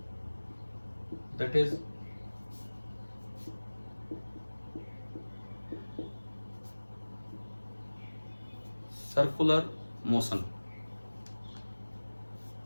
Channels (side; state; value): both; inverted; correlation -1.00